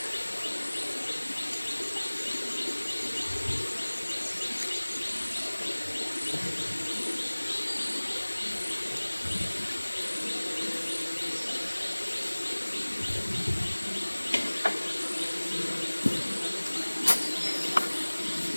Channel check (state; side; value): inverted; both; correlation -1.00